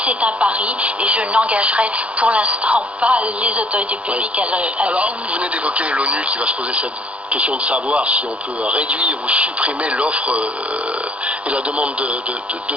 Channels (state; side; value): late; left; 0.062 ms